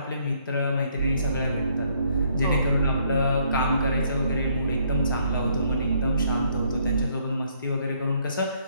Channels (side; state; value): both; inverted; correlation -0.67